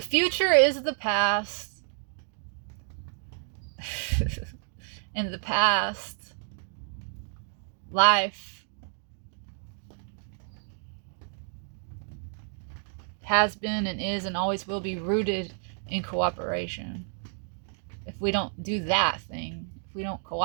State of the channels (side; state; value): left; silent; 56 dB below the other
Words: future is the past. In the past, life has been and is and always will be rooted in cooperation. If we don't do that thing, if we don't